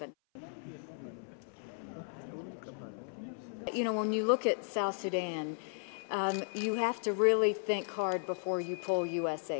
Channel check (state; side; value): silent; right; 54 dB below the other